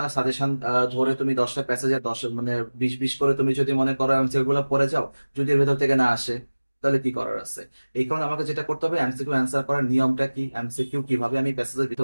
সাজেশন ধরে তুমি 10টা প্যাসেজে 10 মানে 20 20 করে তুমি যদি মনে করো এমসিকিউ গুলো পড়ে যাও, যদি এর ভেতর থেকে না আসে তাহলে কি করার আছে? এই কারণে আমাকে যেটা করতে হবে, এমসিকিউ অ্যান্সার করার নিয়মটা কি, এমসিকিউ কিভাবে আমি প্যাসেজের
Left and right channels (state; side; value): inverted; both; correlation -1.00